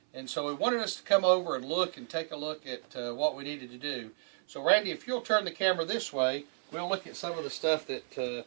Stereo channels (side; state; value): left; silent; 56 dB below the other